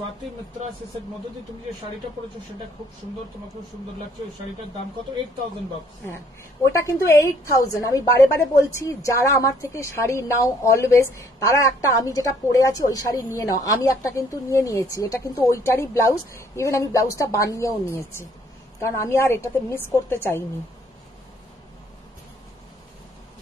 মিত্রা সে মধুদি তুমি যে শাড়িটা পরেছো সেটা খুব সুন্দর, তোমাকে খুব সুন্দর লাগছে। ওই শাড়িটার দাম কত? 8,000 bucks। হ্যাঁ ওটা কিন্তু 8,000। আমি বারে বারে বলছি, যারা আমার থেকে শাড়ি নাও অলওয়েজ, তারা একটা আমি যেটা পরে আছি ওই শাড়ি নিয়ে নাও। আমি একটা কিন্তু নিয়ে নিয়েছি, এটা কিন্তু ওইটারই ব্লাউজ, ইভেন আমি ব্লাউজটা বানিয়েও নিয়েছি, কারণ আমি আর এটাতে মিস করতে চাইনি।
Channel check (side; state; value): both; normal; correlation 0.63